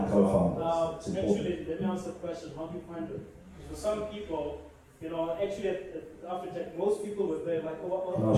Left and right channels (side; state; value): both; identical; correlation 1.00